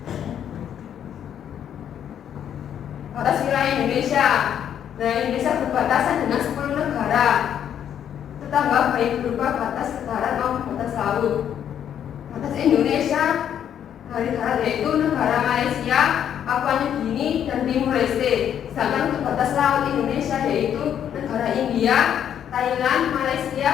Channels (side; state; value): right; quieter; 9.4 dB